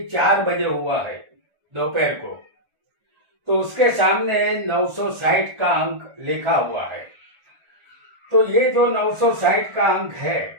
4 बजे हुआ है दोपहर को। तो उसके सामने 960 का अंक लिखा हुआ है। तो ये जो 960 का अंक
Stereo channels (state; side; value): late; left; 1.4 ms